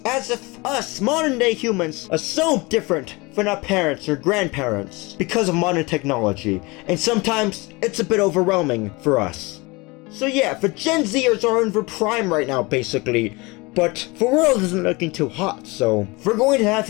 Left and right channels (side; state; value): right; quieter; 24.9 dB